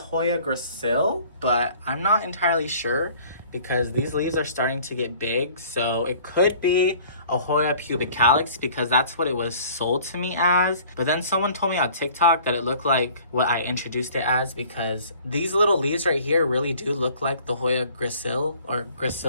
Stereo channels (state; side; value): inverted; both; correlation -0.51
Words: gracile, but I'm not entirely sure because these leaves are starting to get big. So it could be a Hoya pubicalis because that's what it was sold to me as. But then someone told me on TikTok that it looked like what I introduced it as because these little leaves right here really do look like the Hoya gracile or